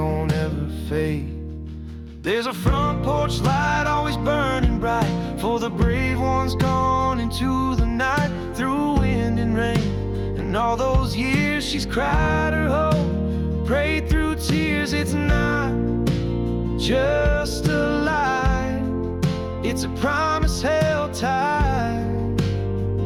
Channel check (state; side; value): identical; both; correlation 1.00